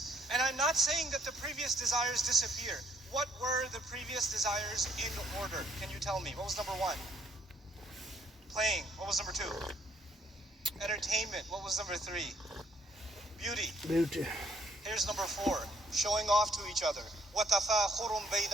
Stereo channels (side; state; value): both; normal; correlation 0.66